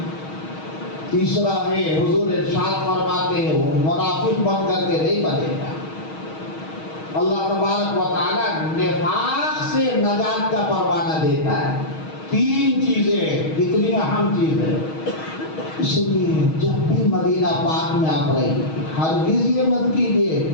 تیسرا ہے حضور ارشاد فرماتے ہیں وہ منافق بن کر کے نہیں بنے گا۔ اللہ تبارک و تعالیٰ نفاق سے نجات کا پروانہ دیتا ہے۔ 3 چیزیں کتنی اہم چیز ہے۔ اس لیے جب بھی مدینہ پاک میں آپ رہیں ہرگز یہ مت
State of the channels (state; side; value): late; right; 6.3 ms